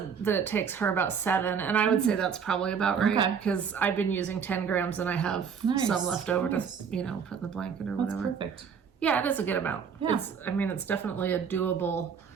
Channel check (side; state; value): left; quieter; 6.8 dB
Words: that it takes her about 7, and I would say that's probably about right because I've been using 10 grams and I have some left over to put in the blanket or whatever. That's perfect. Yeah, it is a good amount. Yeah. It's definitely a doable,